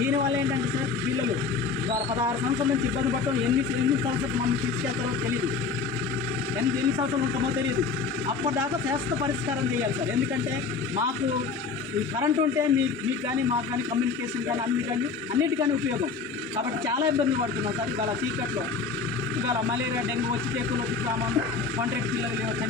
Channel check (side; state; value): right; quieter; 4.7 dB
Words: ఏంటంటే సార్ పిల్లలు ఇవాళ 16 సంవత్సరాల నుంచి ఇబ్బంది పడటం ఎన్ని సంవత్సరాలు మమ్మల్ని తీసుకెళ్తారో తెలియదు, ఎన్ని సంవత్సరాలు ఉంటామో తెలియదు. అప్పటిదాకా శాశ్వత పరిష్కారం చేయాలి సార్. ఎందుకంటే మాకు ఈ కరెంట్ ఉంటే మీకు కానీ మాకు కానీ కమ్యూనికేషన్ కానీ అన్నిటికీ ఉపయోగం. కాబట్టి చాలా ఇబ్బందులు పడుతున్నాం సార్. ఇవాళ చీకట్లో ఇవాళ మలేరియా డెంగ్యూ వచ్చి టెక్కులు వచ్చి సామాను కాంట్రాక్ట్ పిల్లలు